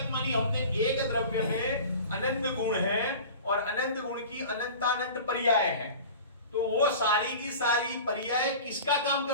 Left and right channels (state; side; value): inverted; both; correlation -0.38